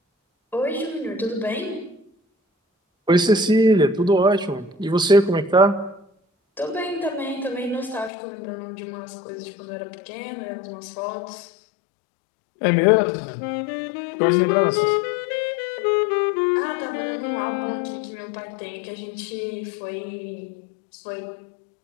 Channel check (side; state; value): right; drops out; at 8.1 s